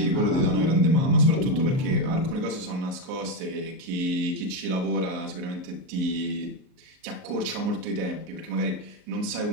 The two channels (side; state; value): left; late; 38 ms